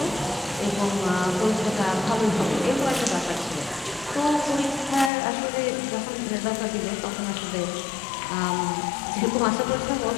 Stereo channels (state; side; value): drops out; right; at 5.1 s